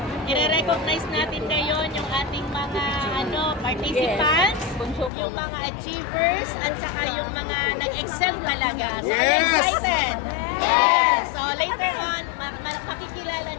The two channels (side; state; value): right; drops out; at 5.1 s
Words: i-recognize natin ngayon yung ating mga participants, yung mga achievers, at saka yung mga nag-excel talaga. So, I'm excited! Yes! So, later on, makikilala